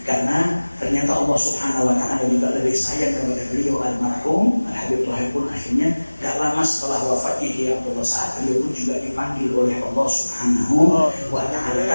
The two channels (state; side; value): inverted; both; correlation -1.00